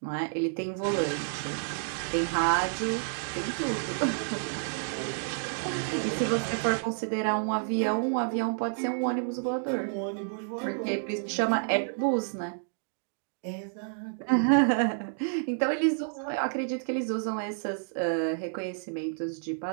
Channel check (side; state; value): left; silent; digital silence